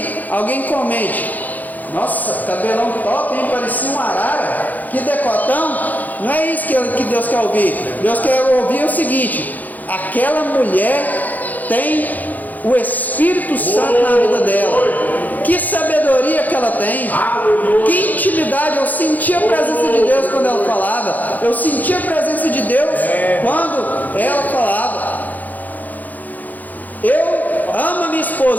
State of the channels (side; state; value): right; late; 0.082 ms